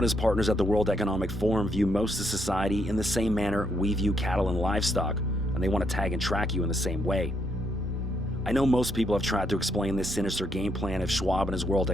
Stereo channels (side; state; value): both; normal; correlation 0.75